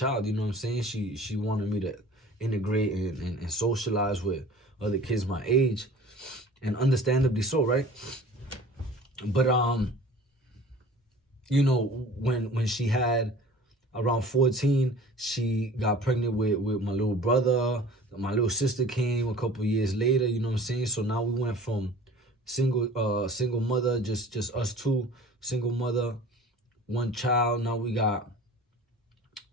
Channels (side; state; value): both; normal; correlation 0.44